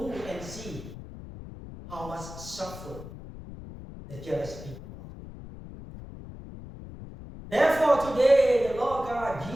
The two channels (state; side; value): noise; left; rumble, 13 dB below the sound